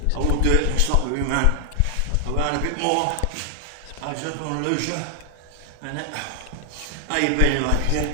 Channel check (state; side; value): different; both; correlation 0.00